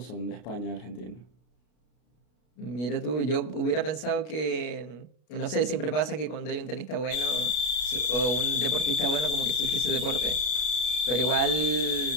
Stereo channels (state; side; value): late; right; 33 ms